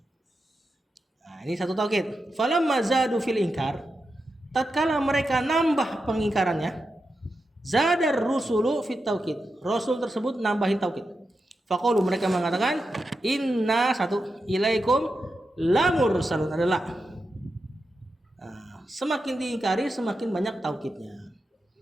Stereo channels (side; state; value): both; normal; correlation 0.89